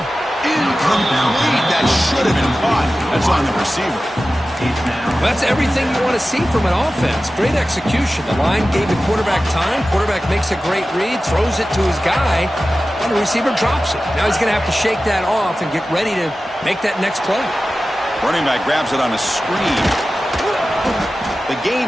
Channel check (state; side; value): normal; both; correlation 0.95